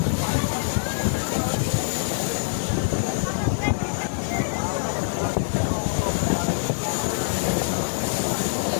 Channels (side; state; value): right; silent; digital silence